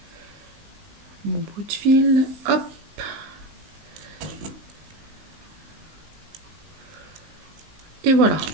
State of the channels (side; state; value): left; late; 19 ms